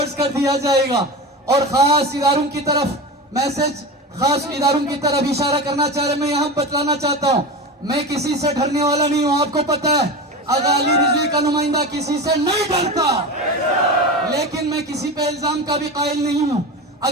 کر دیا جائے گا، اور خاص اداروں کی طرف میسج، خاص اداروں کی طرف اشارہ کرنا چاہ رہے ہیں. میں یہاں بتلانا چاہتا ہوں میں کسی سے ڈرنے والا نہیں ہوں. آپ کو پتہ ہے آغا علی رضوی کا نمائندہ کسی سے نہیں ڈرتا، لیکن میں کسی پہ الزام کا بھی قائل نہیں ہوں.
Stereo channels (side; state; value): both; normal; correlation 0.25